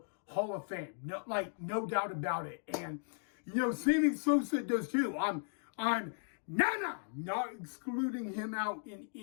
Hall of Fame. No doubt about it. And, Sammy Sosa does too. I'm not excluding him out in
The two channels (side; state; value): right; silent; digital silence